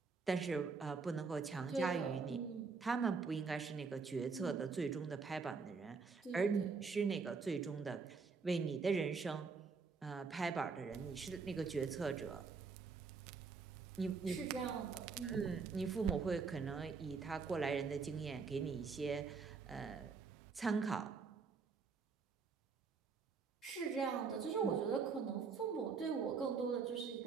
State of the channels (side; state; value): left; quieter; 5.0 dB